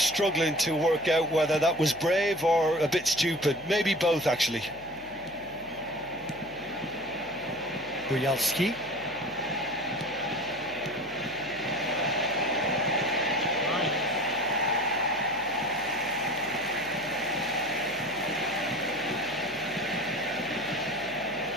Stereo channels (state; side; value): noise; left; hum, 22 dB below the sound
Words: to work out whether that was brave or a bit stupid. Maybe both, actually. Bojalski.